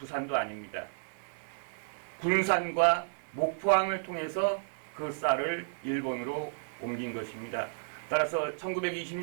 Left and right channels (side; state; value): left; silent; digital silence